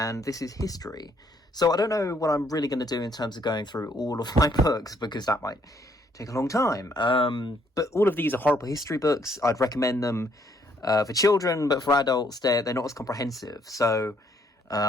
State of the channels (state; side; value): normal; both; correlation 0.68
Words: this is history. So I don't know what I'm really going to do in terms of going through all of my books, because that might take a long time. But all of these are horrible history books. I'd recommend them for children, but for adults, they're not as comprehensive. So